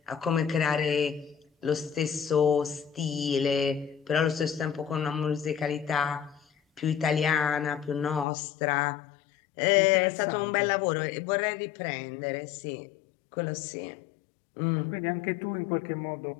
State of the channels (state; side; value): drops out; right; at 8.2 s